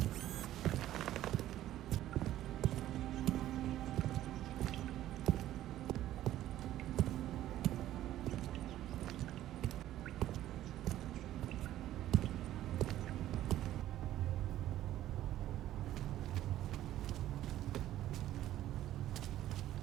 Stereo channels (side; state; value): left; quieter; 13.4 dB